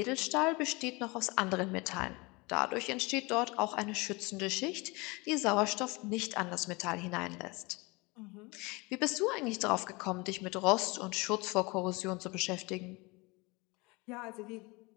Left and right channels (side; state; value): right; quieter; 25.7 dB